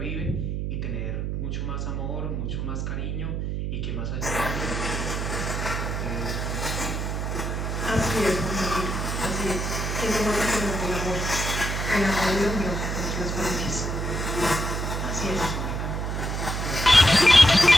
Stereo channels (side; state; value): right; noise; hum, 2 dB below the sound